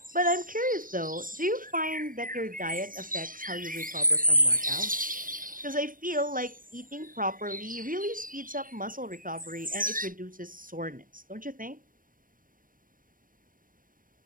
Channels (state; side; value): late; left; 0.40 ms